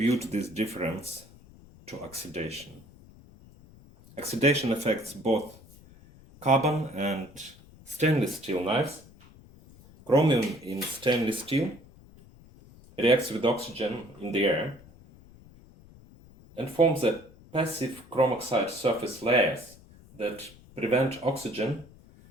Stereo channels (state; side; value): noise; left; rumble, 23 dB below the sound